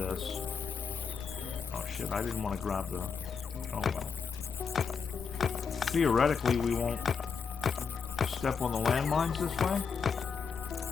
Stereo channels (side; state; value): right; quieter; 5.9 dB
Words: Oh shit, I didn't want to grab the... Oh well. Theoretically, we won't step on the landmines this way.